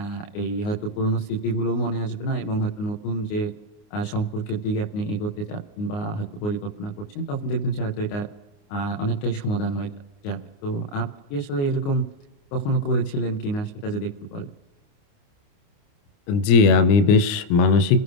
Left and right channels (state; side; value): late; right; 29 ms